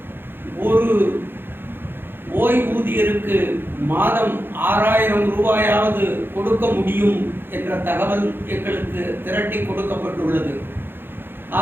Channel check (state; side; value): late; left; 0.10 ms